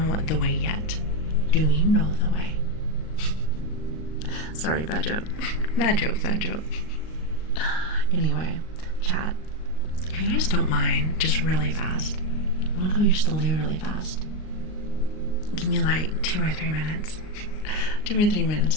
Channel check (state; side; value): late; right; 38 ms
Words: the way yet. Do you know the way? Sorry, bad joke. Bad joke, bad joke. Anyway, chat. If you guys don't mind, just really fast. I'm gonna go use the loo really fast. Give me like 2 or 3 minutes. 2 or 3